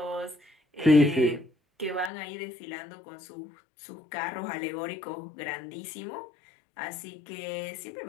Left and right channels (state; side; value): drops out; right; at 2.1 s